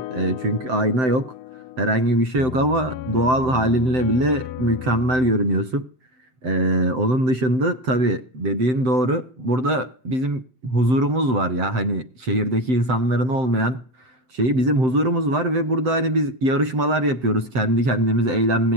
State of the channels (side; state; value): left; late; 7.8 ms